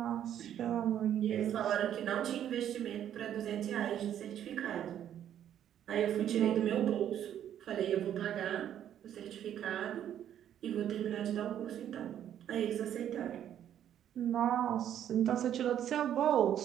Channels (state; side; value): quieter; left; 10.4 dB